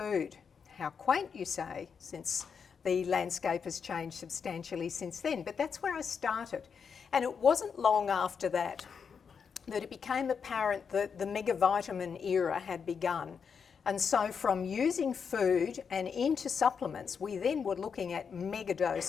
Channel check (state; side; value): quieter; right; 6.4 dB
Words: How quaint, you say, since the landscape has changed substantially since then. But that's where I started. And it wasn't long after that that it became apparent that the megavitamin era had begun. And so from using food and into supplements, we then were looking at mega